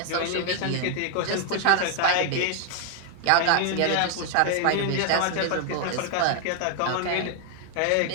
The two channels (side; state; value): both; different; correlation 0.00